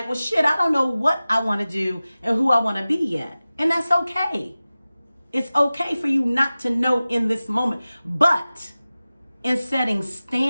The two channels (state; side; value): inverted; both; correlation -0.97